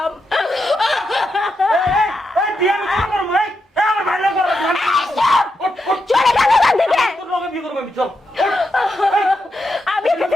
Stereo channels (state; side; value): normal; both; correlation 0.84